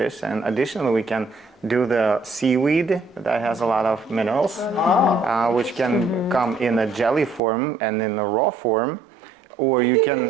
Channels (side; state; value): left; drops out; at 7.4 s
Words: And additionally, we can do the seaweed that has a lot of minerals, which can come in a jelly form and in a raw form, or you can